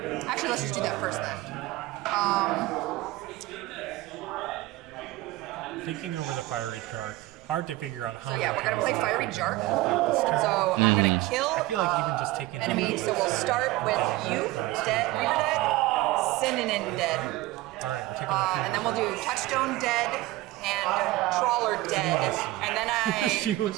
Actually, let's just do used that on first the then. Thinking over the Fiery Shark, hard to figure out how So many yeah, we're gonna times play left Fiery we're gonna Shark. fight this turn. So I'm gonna kill. I feel like even just taking out enemy. that So we'll Webster start and with getting you, the rest of dead, the board to fight. Synonym dead, Alright, we're taking out a few and then more we'll do cards. Touchstone dead and Trawler dead, wants to- and then I she like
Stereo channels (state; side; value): quieter; left; 18.2 dB